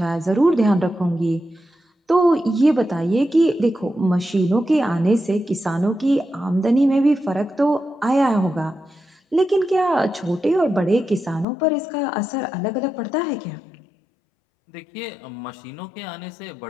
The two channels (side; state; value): right; drops out; at 11.5 s